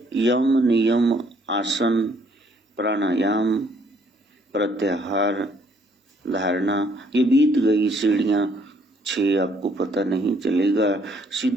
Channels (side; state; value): both; normal; correlation 0.65